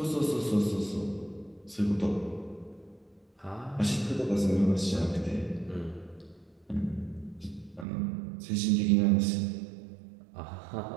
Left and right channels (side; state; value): left; drops out; at 7.9 s